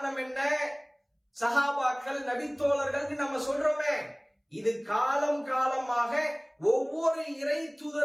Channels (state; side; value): identical; both; correlation 1.00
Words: என்ன? சஹாபாக்கள், நபித்தோழர்கள் நம்ம சொல்றோமே, இது காலம் காலமாக ஒவ்வொரு இறை